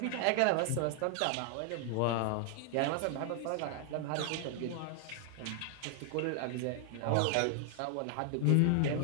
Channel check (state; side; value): different; both; correlation 0.00